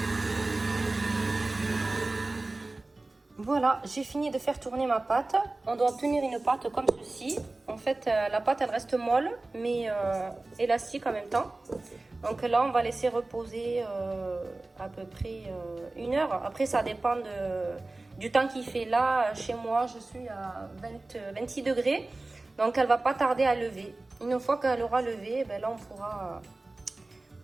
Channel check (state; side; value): quieter; left; 3.1 dB